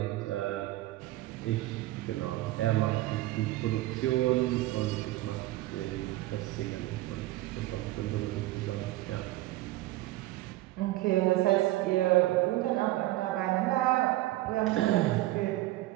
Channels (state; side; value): quieter; left; 17.0 dB